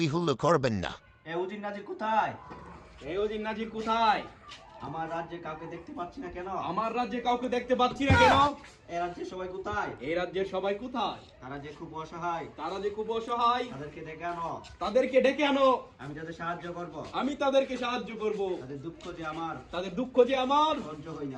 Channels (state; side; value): identical; both; correlation 1.00